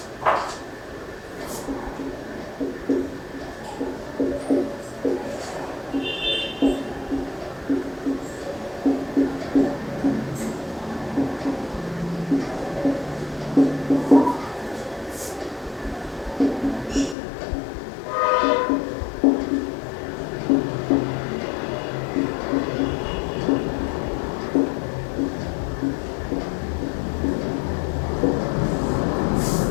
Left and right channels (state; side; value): drops out; right; at 17.2 s